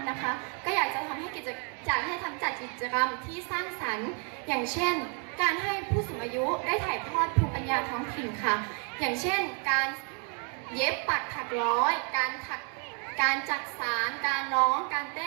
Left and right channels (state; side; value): quieter; left; 39.1 dB